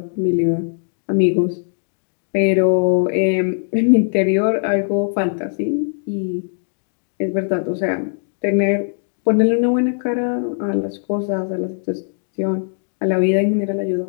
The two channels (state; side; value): silent; right; digital silence